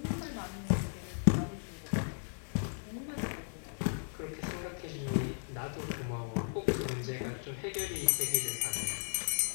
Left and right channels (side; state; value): right; silent; digital silence